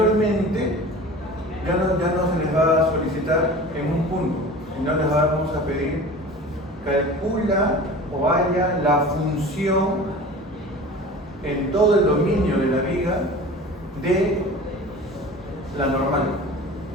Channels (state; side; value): normal; both; correlation 0.38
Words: ya no se les va a solicitar en un punto, sino les vamos a pedir calcula o haya la función en todo el dominio de la viga de la normal